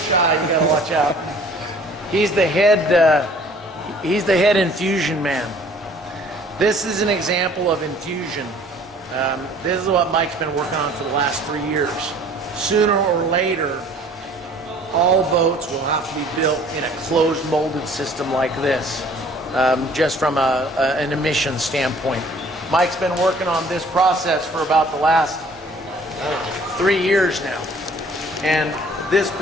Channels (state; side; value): normal; both; correlation 0.53